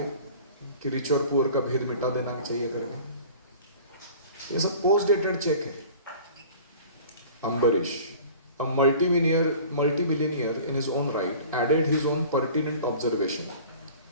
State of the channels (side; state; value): both; inverted; correlation -0.44